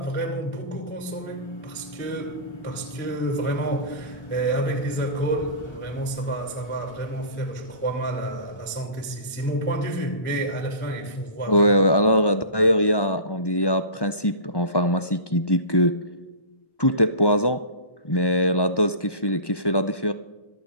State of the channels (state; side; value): late; right; 1.1 ms